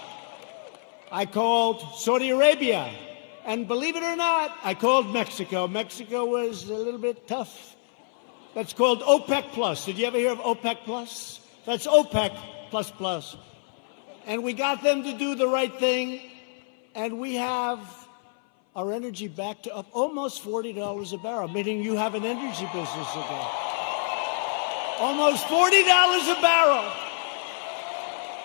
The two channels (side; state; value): right; silent; 58 dB below the other